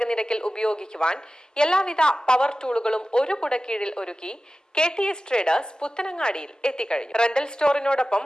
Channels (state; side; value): normal; both; correlation 0.95